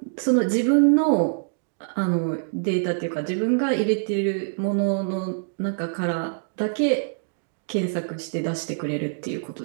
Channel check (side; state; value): left; silent; digital silence